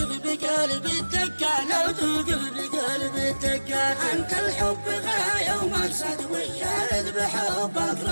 بقلبي الدكان لو توقف بقلبي الدكان أنت الحب غاية ومقصد والشاهد بحبك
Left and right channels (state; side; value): inverted; both; correlation -1.00